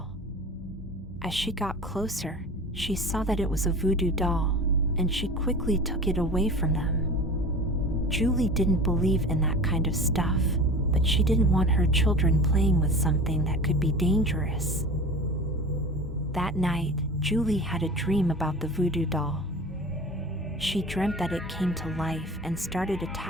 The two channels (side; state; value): both; normal; correlation 0.36